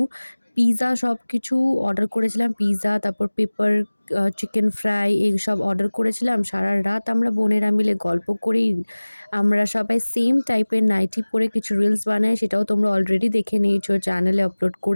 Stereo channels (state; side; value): inverted; both; correlation -1.00